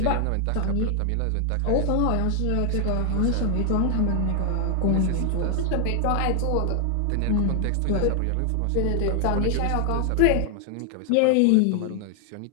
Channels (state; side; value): different; both; correlation 0.00